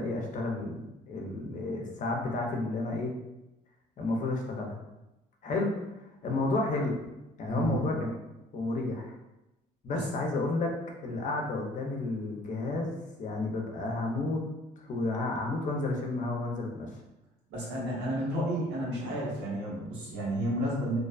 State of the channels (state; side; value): normal; both; correlation 0.56